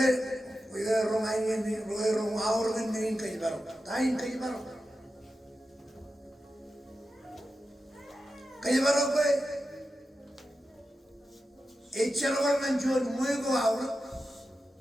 rumah ini, rumah awal ini kayak baru, tain kayak baru kaya, echarawal manjuan, muego awal,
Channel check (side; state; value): both; normal; correlation 0.91